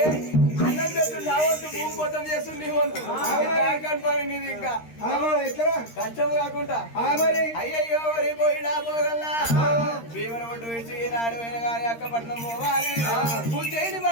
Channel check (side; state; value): right; late; 13 ms